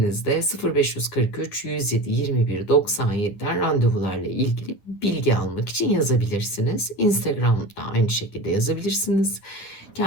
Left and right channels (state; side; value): late; right; 9.9 ms